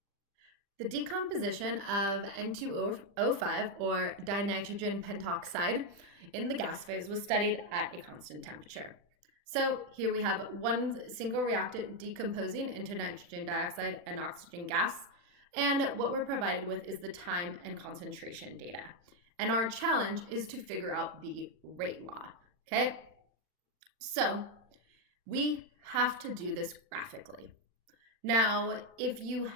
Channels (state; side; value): late; left; 40 ms